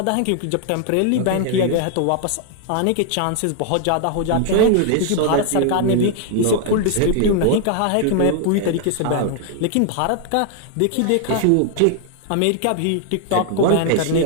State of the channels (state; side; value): different; both; correlation 0.00